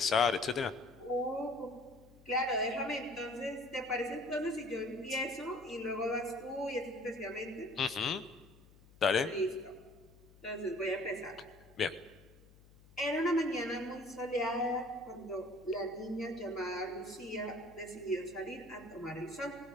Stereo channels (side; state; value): left; noise; hum, 24 dB below the sound